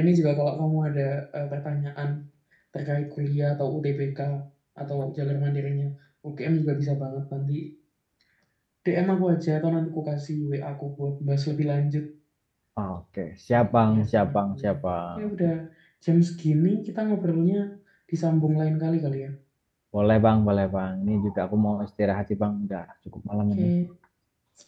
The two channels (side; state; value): both; identical; correlation 1.00